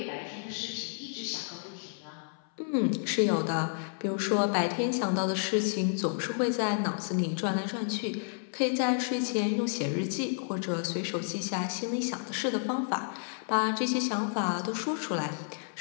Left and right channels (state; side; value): silent; right; 57 dB below the other